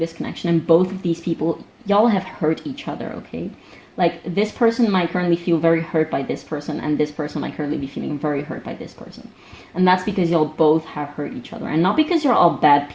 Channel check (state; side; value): identical; both; correlation 1.00